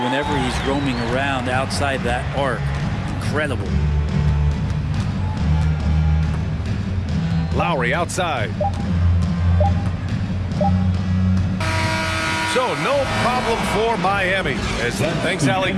he's roaming around outside that arc. Incredible. Lowry outside. So no problem for Miami. Thanks, Ali.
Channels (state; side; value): identical; both; correlation 1.00